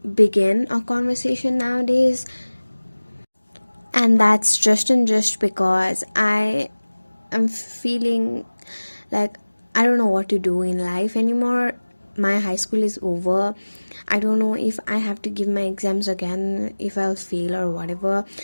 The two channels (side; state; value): both; inverted; correlation -1.00